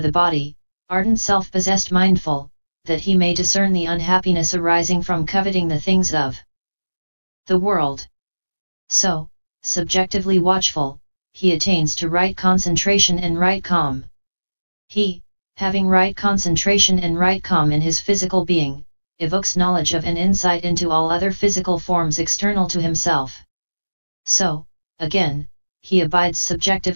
body, ardent self-possessed mindful, that he may discern the unhappiness arising from coveting the things of the world. So, subjectively watchful, he attains to right concentration and right calm. He, having right concentration and right calm in his physical being, evokes knowledge of and insight into all other physical forms external to himself. So, again, he abides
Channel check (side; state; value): both; inverted; correlation -1.00